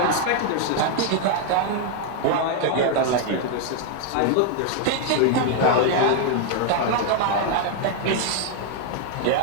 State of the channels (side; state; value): both; different; correlation 0.00